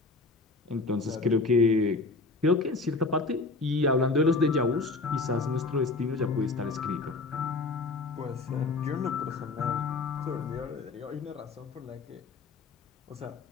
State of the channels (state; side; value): quieter; right; 3.6 dB